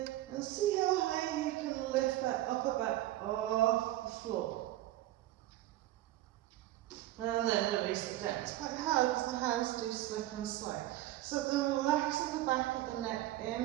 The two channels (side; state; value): left; quieter; 15.4 dB